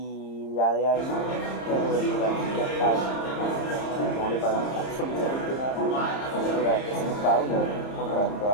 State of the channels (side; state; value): right; late; 30 ms